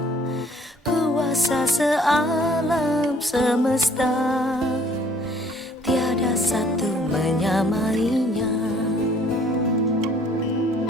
kuasa sealam semesta, tiada satu menyamainya.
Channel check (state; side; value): normal; both; correlation 0.58